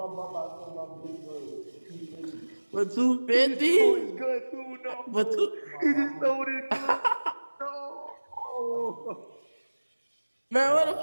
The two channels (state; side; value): inverted; both; correlation -1.00